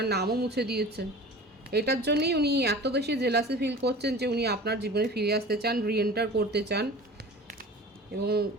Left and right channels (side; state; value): both; normal; correlation 0.39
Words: নামও মুছে দিয়েছেন। এটার জন্যই উনি এত বেশি জেলাসি ফিল করছেন যে উনি আপনার জীবনে ফিরে আসতে চান, রিএন্টার করতে চান, এবং